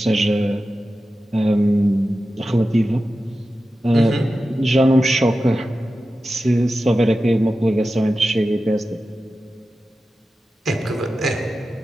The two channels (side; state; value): both; normal; correlation 0.93